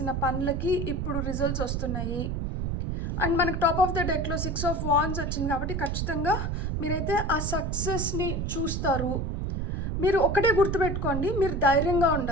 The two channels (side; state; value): right; noise; rumble, 1 dB below the sound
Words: పనులకి ఇప్పుడు రిజల్ట్స్ వస్తున్నాయి. అండ్ మనకు టాప్ ఆఫ్ ద డెక్లో 6 ఆఫ్ వాండ్స్ వచ్చింది కాబట్టి ఖచ్చితంగా మీరైతే ఆ సక్సెస్ని చూస్తారు. మీరు ఒకటే గుర్తుపెట్టుకోండి, మీరు ధైర్యంగా